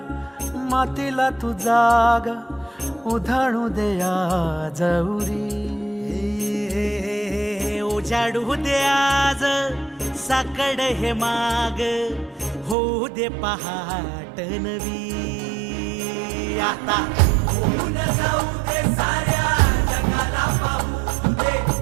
मातीला तू जाग उधाणू दे आज उरी. उजाडू दे आज साकड हे माग होऊ दे पहाट नवी. आता होऊन जाऊ दे साऱ्या जगाला पाहू दे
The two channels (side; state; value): left; drops out; at 12.8 s